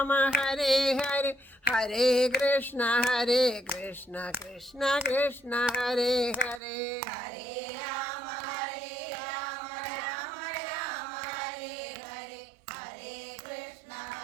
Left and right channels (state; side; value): drops out; left; at 6.6 s